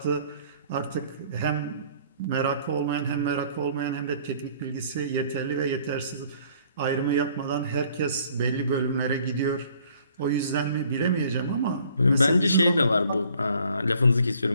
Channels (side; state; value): both; inverted; correlation -0.58